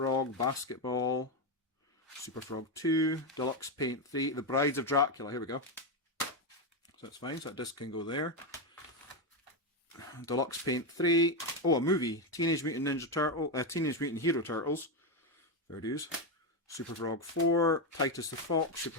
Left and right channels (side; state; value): both; normal; correlation 0.08